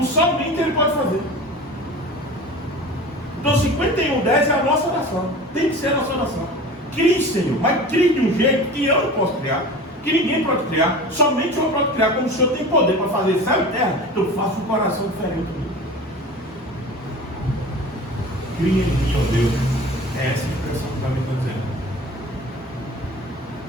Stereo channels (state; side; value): normal; both; correlation 0.36